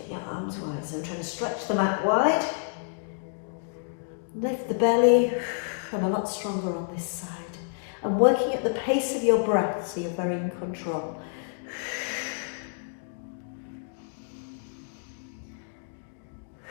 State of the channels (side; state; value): right; silent; digital silence